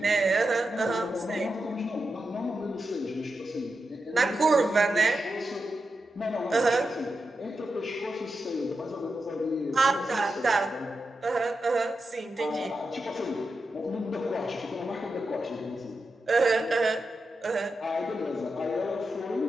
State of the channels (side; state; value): both; normal; correlation 0.88